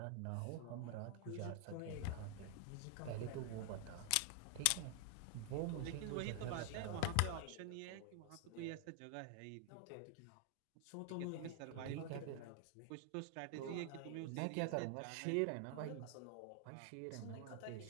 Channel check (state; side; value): different; both; correlation 0.00